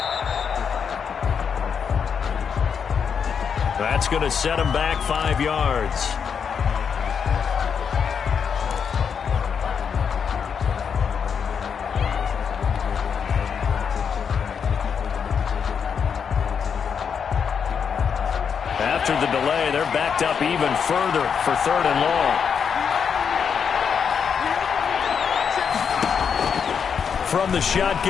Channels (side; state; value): right; quieter; 6.8 dB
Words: That's going to set him back 5 yards. After the delay, they're backed up even further for 3rd and long. From the